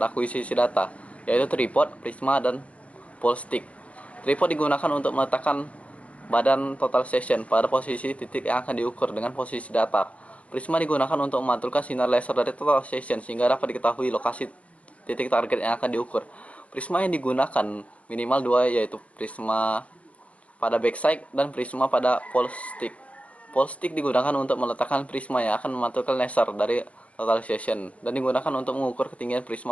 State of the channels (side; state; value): right; late; 0.065 ms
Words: akuisisi data, yaitu tripod, prisma, dan pole stick. Tripod digunakan untuk meletakkan badan total session pada posisi titik yang akan diukur dengan posisi datar. Prisma digunakan untuk memantulkan sinar laser dari total session sehingga dapat diketahui lokasi titik target yang akan diukur. Prisma yang digunakan minimal dua, yaitu prisma pada backside dan prisma pada pole stick. Pole stick digunakan untuk meletakkan prisma yang akan memantulkan laser dari total session dan digunakan untuk mengukur ketinggian